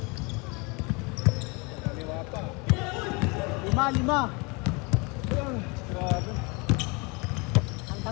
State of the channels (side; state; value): right; quieter; 29.1 dB